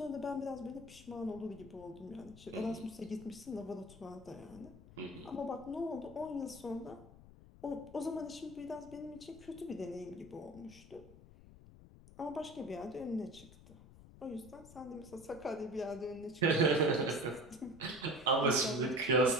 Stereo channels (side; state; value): left; noise; rumble, 19 dB below the sound